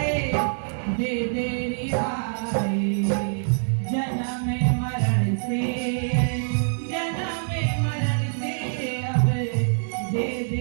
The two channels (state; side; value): silent; left; digital silence